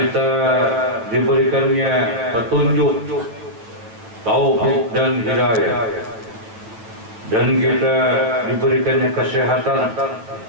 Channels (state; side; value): late; left; 9.0 ms